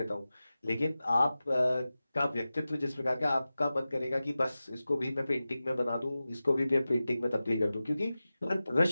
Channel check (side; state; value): both; inverted; correlation -0.95